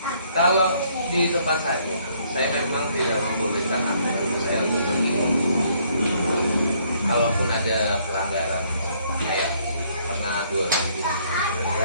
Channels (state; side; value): inverted; both; correlation -0.66